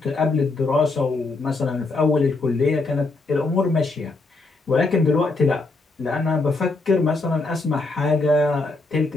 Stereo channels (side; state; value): right; quieter; 3.4 dB